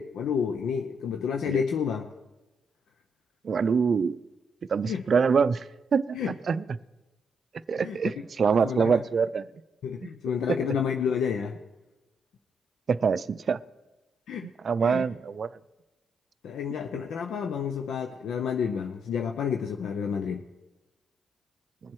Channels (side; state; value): both; normal; correlation 0.76